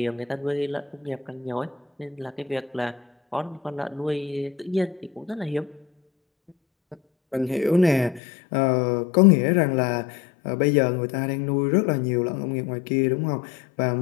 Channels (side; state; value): right; drops out; at 8.2 s